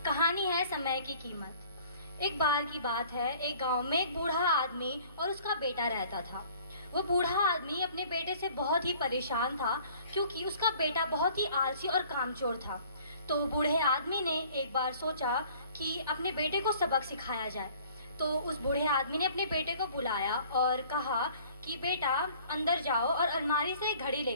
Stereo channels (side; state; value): both; inverted; correlation -0.53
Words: कहानी है समय की कीमत। एक बार की बात है, एक गांव में एक बूढ़ा आदमी और उसका बेटा रहता था। वो बूढ़ा आदमी अपने बेटे से बहुत ही परेशान था, क्योंकि उसका बेटा बहुत ही आलसी और कामचोर था। तो बूढ़े आदमी ने एक बार सोचा कि अपने बेटे को सबक सिखाया जाए। तो उस बूढ़े आदमी ने अपने बेटे को बुलाया और कहा कि बेटा अंदर जाओ और अलमारी से एक घड़ी